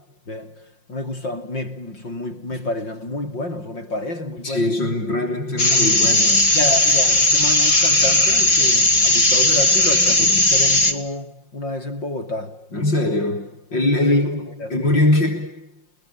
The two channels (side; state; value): right; late; 5.6 ms